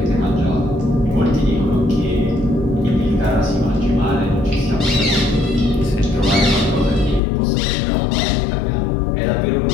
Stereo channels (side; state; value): right; drops out; at 7.2 s